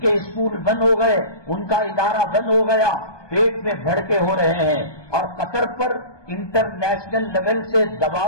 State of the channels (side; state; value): right; late; 1.2 ms